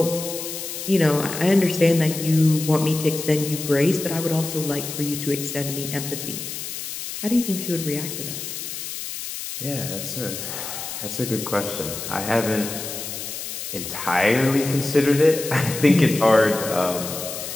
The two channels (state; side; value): noise; left; hiss, 7 dB below the sound